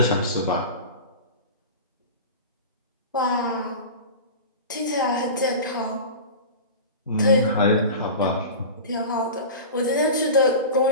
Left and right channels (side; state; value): both; inverted; correlation -0.31